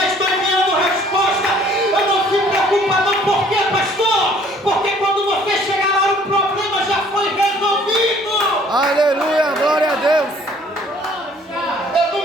estou enviando resposta. Eu não se preocupa não, por quê, pastor? Porque quando você chegar lá, o problema já foi resolvido. Aleluia, glória a Deus. Eu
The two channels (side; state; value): both; normal; correlation 0.57